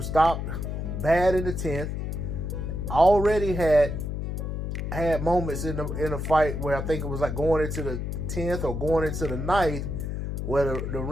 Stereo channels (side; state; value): left; noise; hum, 3 dB below the sound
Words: stopped bad in the 10th. Already had moments in the fight where I think it was like going into the 10th or going into the 9th, where the